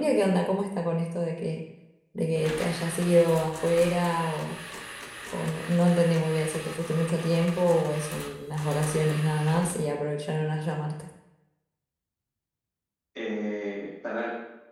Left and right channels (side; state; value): both; identical; correlation 1.00